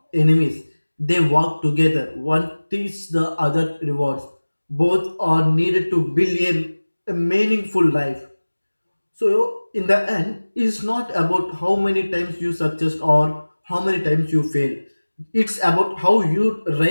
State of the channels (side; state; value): both; inverted; correlation -1.00